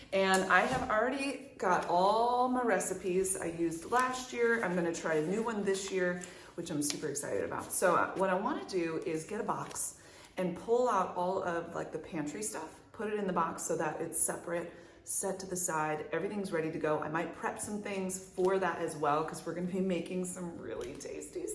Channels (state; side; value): identical; both; correlation 1.00